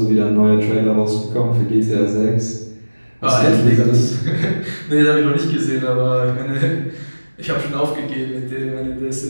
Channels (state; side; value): inverted; both; correlation -1.00